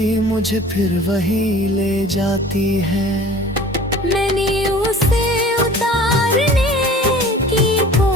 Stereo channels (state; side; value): normal; both; correlation 0.45